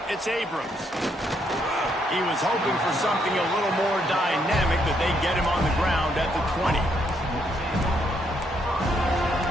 It's Abrams. He was hoping for something a little more dynamic, but they get him on the ground at the 20.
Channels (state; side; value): normal; both; correlation 0.74